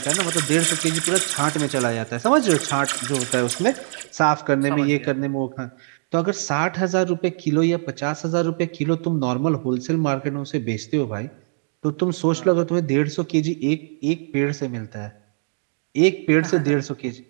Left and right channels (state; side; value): silent; left; 64 dB below the other